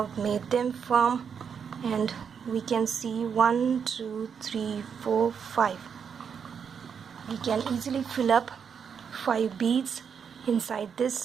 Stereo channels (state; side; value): quieter; left; 6.9 dB